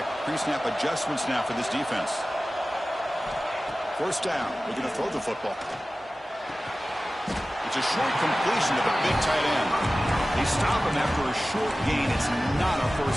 pre-snap adjustments now for this defense. First down. We're going to throw the football. It's a short completion to the big tight end. They stop him after a short gain. It's not a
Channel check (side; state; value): both; normal; correlation 0.96